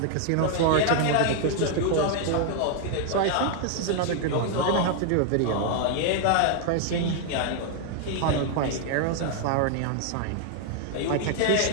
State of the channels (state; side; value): different; both; correlation 0.00